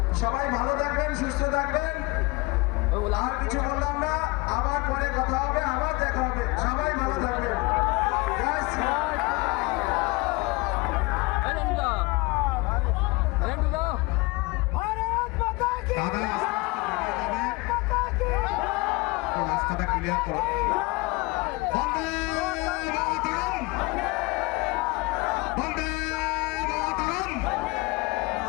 সবাই ভালো থাকবেন, সুস্থ থাকবেন। আর কিছু বললাম না, আবার পরে কথা হবে, আবার দেখা হবে। সবাই ভালো থাকবেন। রাস্তাটা ক্লিয়ার করো।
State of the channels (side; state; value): right; quieter; 24.6 dB